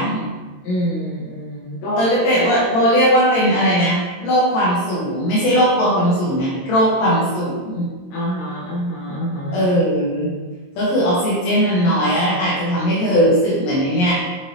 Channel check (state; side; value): late; right; 22 ms